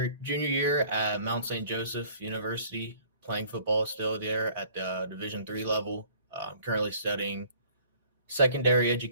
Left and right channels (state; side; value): inverted; both; correlation -0.54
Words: year at Mount St. Joseph University, playing football still there at the Div.III level. I'm currently studying secondary